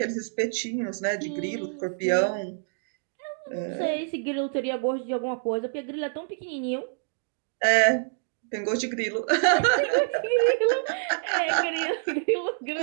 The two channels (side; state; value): left; silent; digital silence